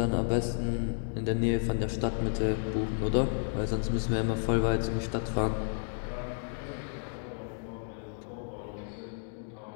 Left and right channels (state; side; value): silent; right; digital silence